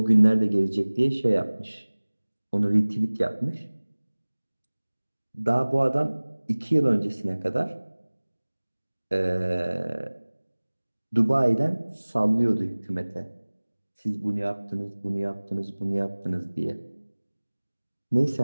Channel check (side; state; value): both; inverted; correlation -1.00